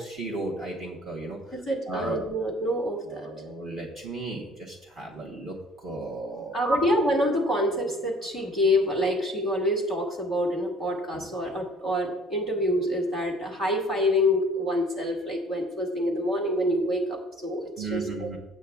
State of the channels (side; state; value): both; normal; correlation 0.53